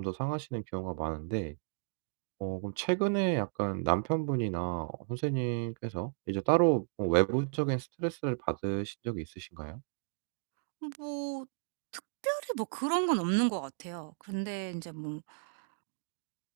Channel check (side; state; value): left; silent; digital silence